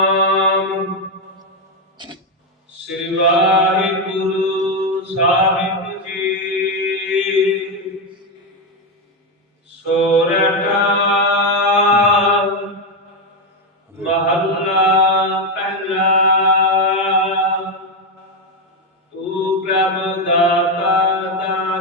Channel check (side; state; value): both; normal; correlation 0.07